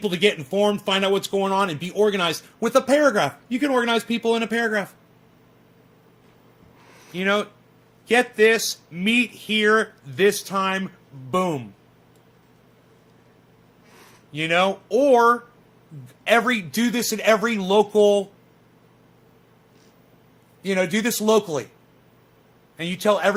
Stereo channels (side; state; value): both; identical; correlation 1.00